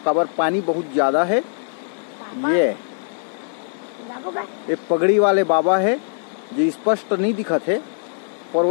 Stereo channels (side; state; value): right; silent; digital silence